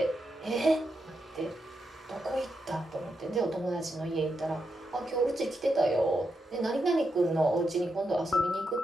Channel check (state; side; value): normal; both; correlation 0.84